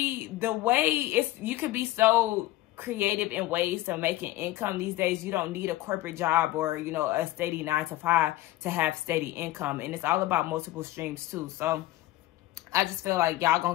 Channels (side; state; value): right; quieter; 16.4 dB